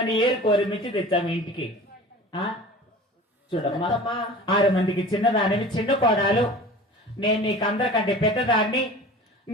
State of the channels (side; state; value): both; normal; correlation 0.39